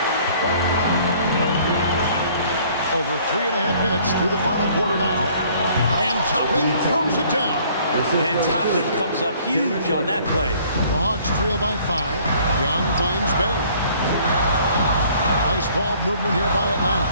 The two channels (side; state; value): both; inverted; correlation -0.57